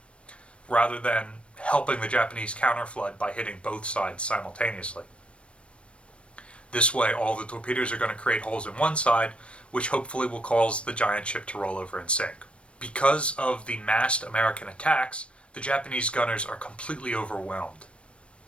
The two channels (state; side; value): late; right; 0.060 ms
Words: rather than helping the Japanese counterflood by hitting both sides simultaneously. This way, all the torpedoes are going to create holes in one side, which hopefully will cause the giant ship to roll over and sink. Because of the massed American attacks, the Japanese gunners are completely overwhelmed.